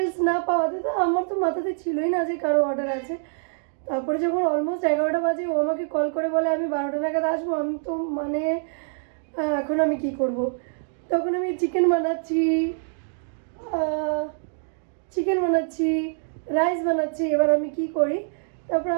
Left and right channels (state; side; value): silent; left; digital silence